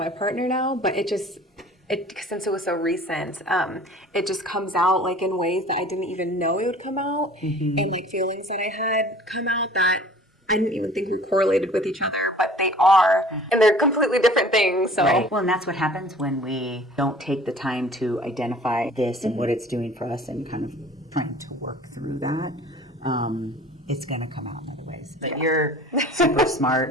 partner now, but since it was so recent, it just comes out like in ways that I didn't even know it would come out, and like feelings that I had come out that I didn't even think were correlated with each other, but they are, and they're completely different things. So, well, and that's what happens when we don't take the time to identify this and what it's doing for us, and kind of trying to work through that. It's going to come out in other ways. But you're super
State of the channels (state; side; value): normal; both; correlation 0.47